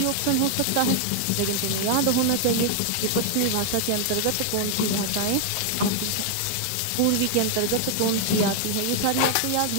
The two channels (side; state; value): both; different; correlation 0.00